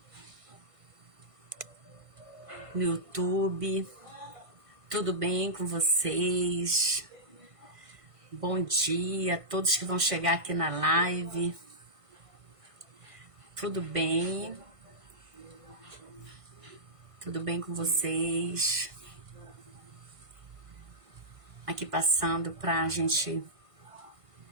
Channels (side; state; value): left; late; 1.5 ms